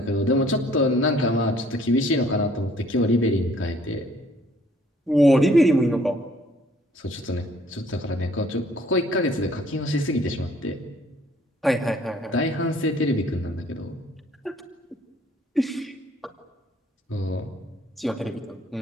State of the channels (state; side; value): normal; both; correlation 0.60